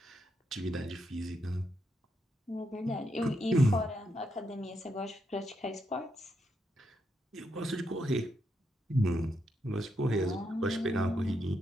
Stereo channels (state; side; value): normal; both; correlation 0.81